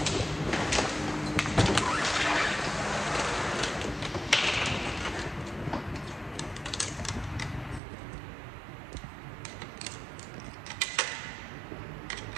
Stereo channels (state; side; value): drops out; left; at 7.8 s